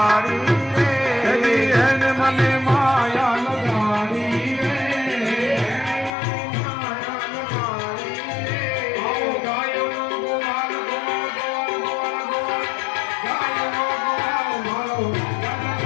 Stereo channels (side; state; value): right; drops out; at 6.2 s